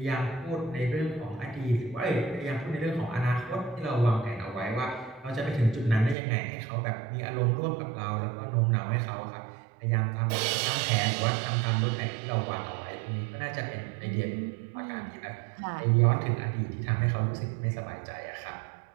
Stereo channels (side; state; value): left; drops out; at 6.2 s